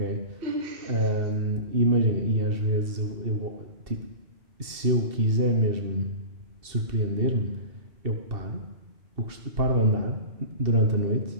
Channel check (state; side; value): late; left; 2.7 ms